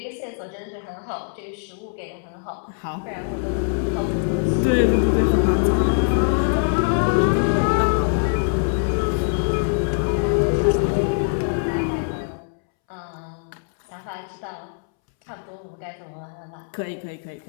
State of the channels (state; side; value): silent; right; 63 dB below the other